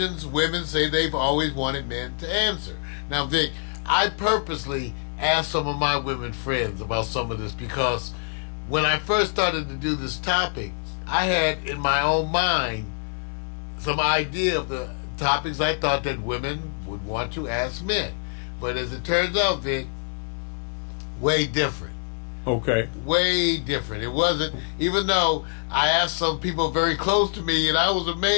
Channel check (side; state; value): right; silent; 57 dB below the other